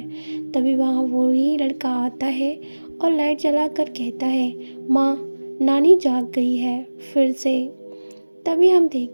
तभी वहाँ वही लड़का आता है और लाइट जलाकर कहता है, माँ, नानी जाग गई है फिर से। तभी हम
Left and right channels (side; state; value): both; inverted; correlation -1.00